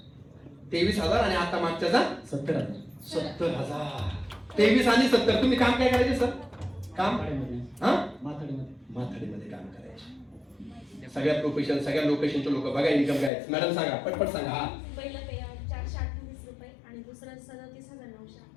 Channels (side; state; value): right; drops out; at 13.3 s